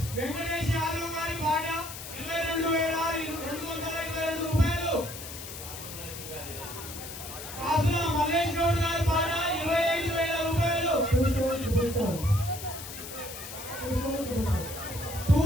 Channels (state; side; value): noise; left; hiss, 11 dB below the sound